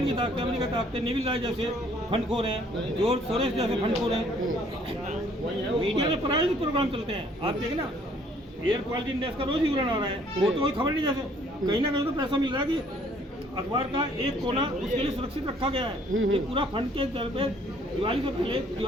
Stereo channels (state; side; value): normal; both; correlation 0.61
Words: की ताकतें, अमेरिका की ताकतें, नेविल राय जैसे फंडखोर हैं, जॉर्ज सोरेस जैसे फंडखोर हैं। मीडिया में प्रायोजित प्रोग्राम चलते हैं, आप देखें ना, एयर क्वालिटी इंडेक्स का रोज ही विवरण आ रहा है, वो तो कोई खबर नहीं। जैसे कहीं ना कहीं तो पैसा मिल रहा है कि अखबार का एक कोना उसके लिए सुरक्षित रखा गया है। ये पूरा फंड के तौर पे दिवाली से पहले